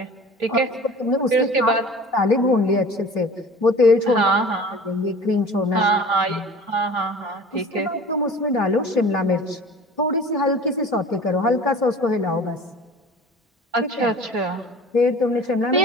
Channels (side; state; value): both; normal; correlation 0.42